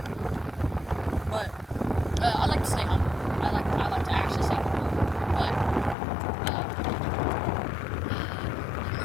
But I like to stay humble. I like to actually stay humble. But I'm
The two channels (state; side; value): drops out; right; at 6.0 s